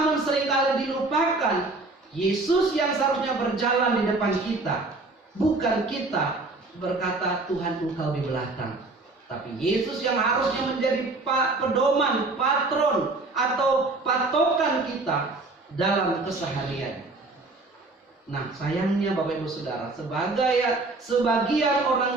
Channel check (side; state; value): left; quieter; 3.3 dB